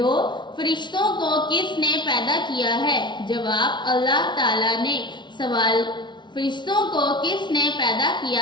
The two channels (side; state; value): right; late; 0.22 ms